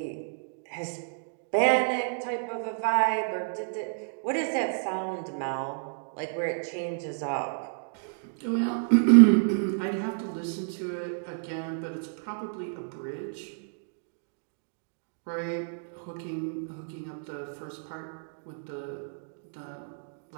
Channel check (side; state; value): left; silent; digital silence